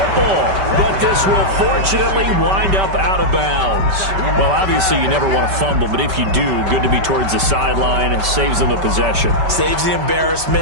But this will fortunately wind up out of bounds. Well, obviously, you never want to fumble, but if you do, good to be towards the sideline. It saves them the possession. Saves the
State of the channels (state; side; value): late; left; 5.2 ms